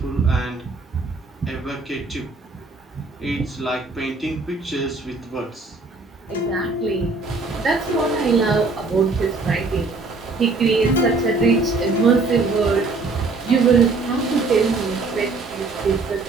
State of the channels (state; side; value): quieter; left; 3.7 dB